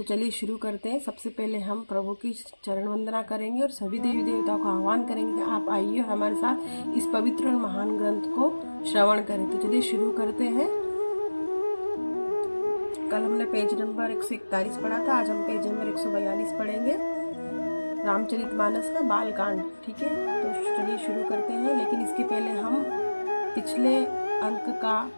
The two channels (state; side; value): inverted; both; correlation -1.00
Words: चलिए शुरू करते हैं। सबसे पहले हम प्रभु की चरण वंदना करेंगे और सभी देवी देवताओं का आह्वान करेंगे कि आप आइए और हमारे साथ इस पवित्र और महान ग्रंथ को श्रवण करें। तो चलिए शुरू करते हैं। कल हमने पेज नंबर 141 पढ़ा था, आज हम पेज नंबर 142 पढ़ेंगे, रामचरितमानस का बालकांड। ठीक है, तो चलिए शुरू करते हैं। लेकिन इसके पहले हम पिछले